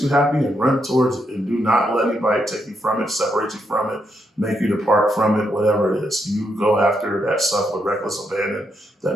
you happy and run towards it. And do not let anybody take you from it, separate you from it, make you depart from it, whatever it is. You go after that stuff with reckless abandon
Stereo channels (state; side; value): normal; both; correlation 0.79